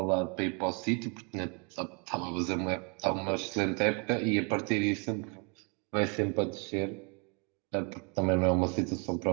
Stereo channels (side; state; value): left; quieter; 35.2 dB